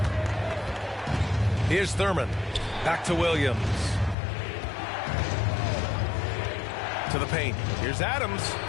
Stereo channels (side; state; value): right; drops out; at 4.2 s